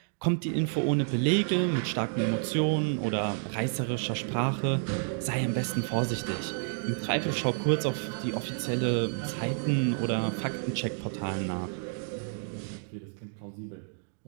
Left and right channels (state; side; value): silent; left; digital silence